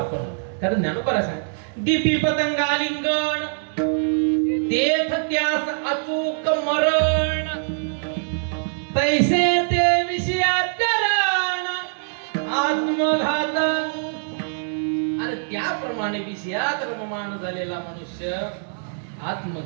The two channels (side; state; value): left; silent; digital silence